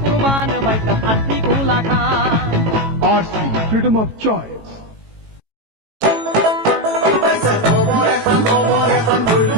কুরবান। ভাই সাহেব আরসি কুলা খান। RC, freedom of choice.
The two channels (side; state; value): left; late; 18 ms